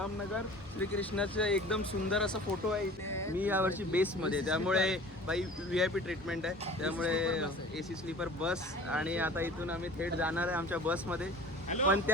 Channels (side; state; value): both; normal; correlation 0.43